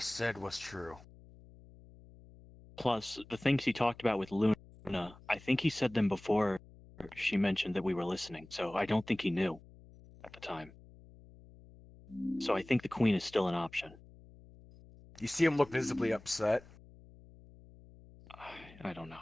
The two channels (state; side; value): noise; left; hum, 22 dB below the sound